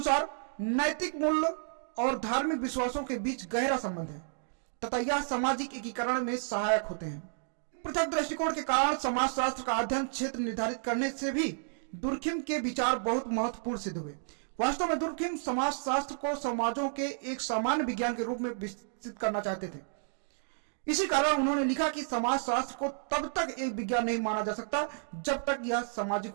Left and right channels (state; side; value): silent; left; digital silence